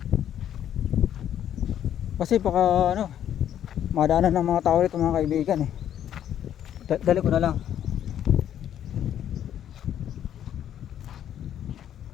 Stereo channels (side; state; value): right; quieter; 10.4 dB